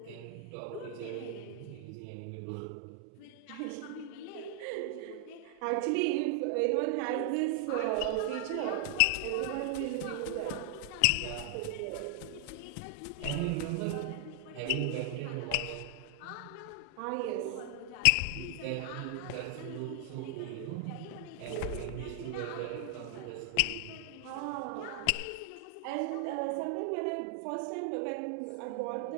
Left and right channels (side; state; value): both; different; correlation 0.00